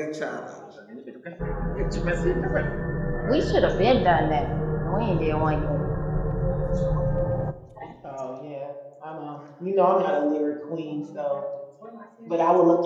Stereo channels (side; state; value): both; identical; correlation 1.00